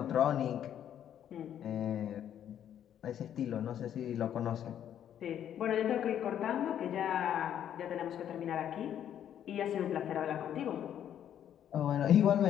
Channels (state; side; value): quieter; right; 10.1 dB